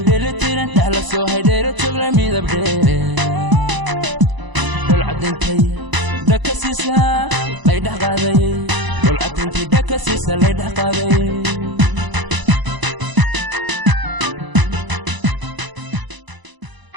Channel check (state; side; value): late; left; 1.0 ms